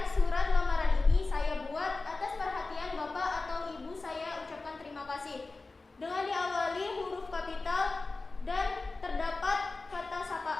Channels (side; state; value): right; quieter; 3.5 dB